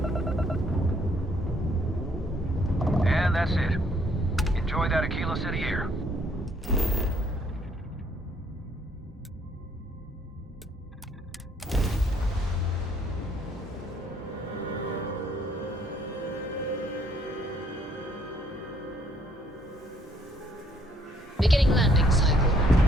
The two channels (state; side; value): normal; both; correlation 0.66